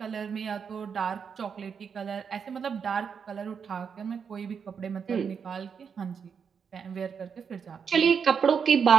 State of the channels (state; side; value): quieter; left; 6.6 dB